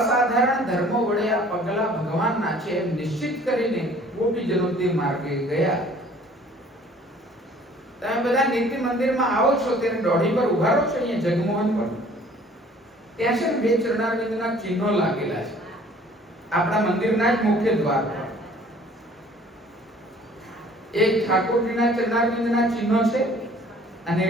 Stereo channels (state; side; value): normal; both; correlation 0.53